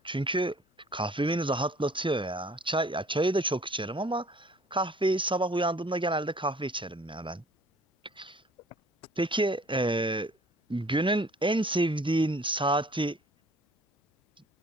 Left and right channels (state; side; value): normal; both; correlation 0.53